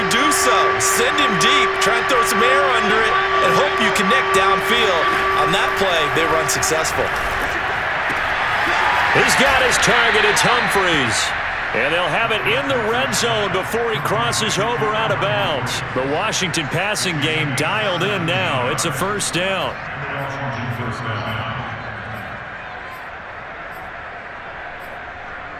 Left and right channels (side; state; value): both; identical; correlation 1.00